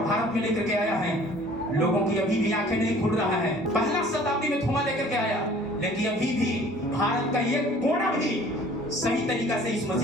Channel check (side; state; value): both; normal; correlation 0.51